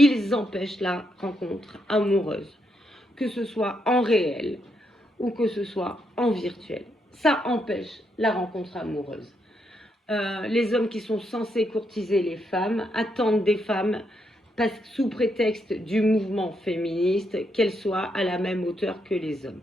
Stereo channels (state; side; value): normal; both; correlation 0.79